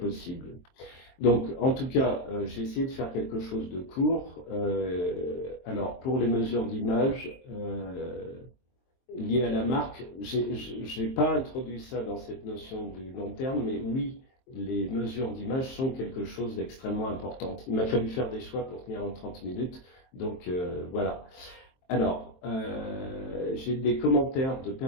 Donc, en tout cas, j'ai essayé de faire quelque chose de court. Alors, pour les mesures d'image liées à la marque, je n'ai pas introduit ça dans cette notion du long terme, mais oui, les mesures d'image sont quelque chose d'extrêmement important. Il m'a fallu faire des choix pour tenir en 30 minutes, donc voilà. Alors, j'ai des commentaires de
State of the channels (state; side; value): late; right; 23 ms